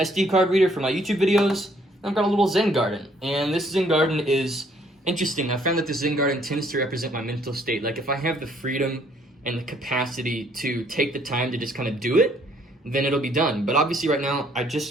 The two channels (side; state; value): both; normal; correlation 0.64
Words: card reader for my YouTube videos. I've got a little Zen Garden, and this Zen Garden is interesting. I found that the Zen Garden tends to represent my mental state. Like, if I have the freedom and the capacity to take the time to just kind of do it, then it'll be done. But obviously right now, I